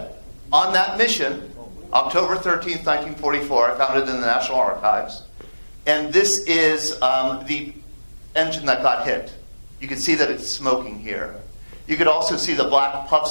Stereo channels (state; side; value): inverted; both; correlation -1.00